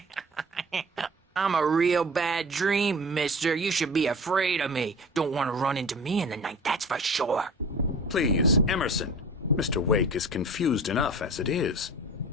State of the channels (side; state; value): both; normal; correlation 0.39